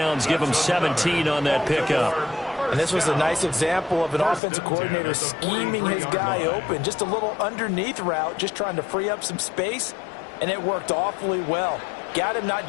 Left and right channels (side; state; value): right; drops out; at 4.4 s